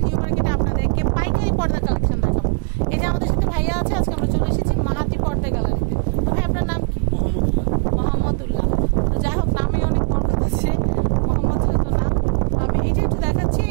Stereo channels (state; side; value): quieter; left; 35.5 dB